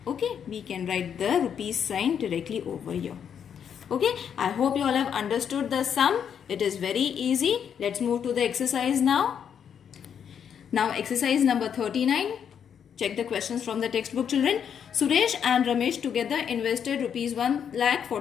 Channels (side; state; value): right; quieter; 8.0 dB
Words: Okay, we can write the rupees sign directly over here. Okay, I hope you all have understood the sum. It is very easy. Let's move to the exercise now. Now exercise number 39. Check the questions from the textbook, children. Suresh and Ramesh together invested rupees